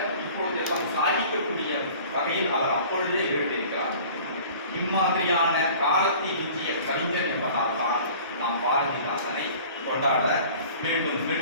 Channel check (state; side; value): inverted; both; correlation -0.45